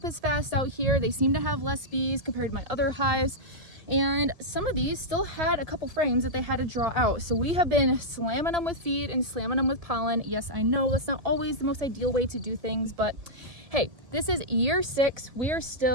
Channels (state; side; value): late; left; 1.7 ms